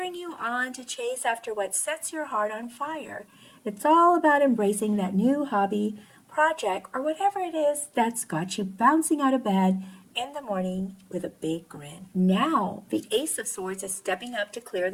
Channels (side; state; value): both; identical; correlation 1.00